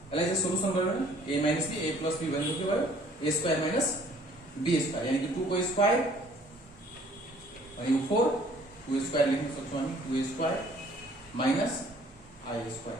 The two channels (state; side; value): normal; both; correlation 0.57